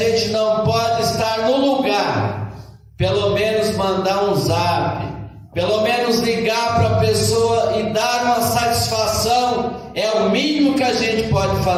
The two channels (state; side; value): identical; both; correlation 1.00